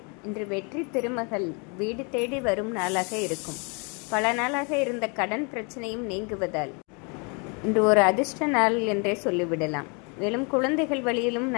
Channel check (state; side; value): quieter; right; 33.7 dB